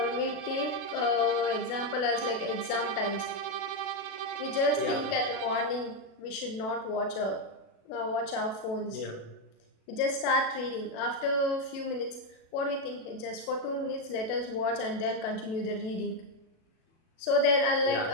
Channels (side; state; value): right; late; 36 ms